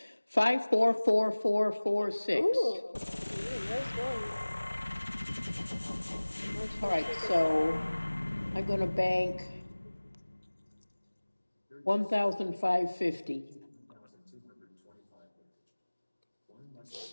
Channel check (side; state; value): both; inverted; correlation -1.00